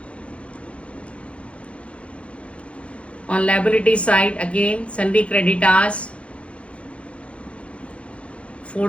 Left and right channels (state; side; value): late; right; 0.061 ms